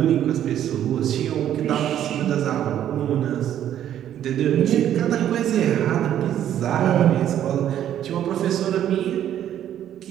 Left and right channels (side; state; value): left; quieter; 10.9 dB